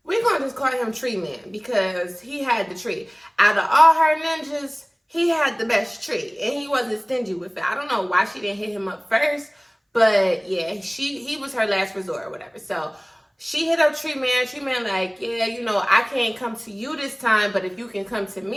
We're going to just call him Tree Man because he had the tree. Out of all her ninjas, he had the best tree. And he wasn't stingy with it. I don't know why she didn't hit him up first. But yeah, he was her last resort or whatever. So she hit up Tree Man. Tree Man like, yeah, you know, I can't come to you this time, but if you can come to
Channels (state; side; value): identical; both; correlation 1.00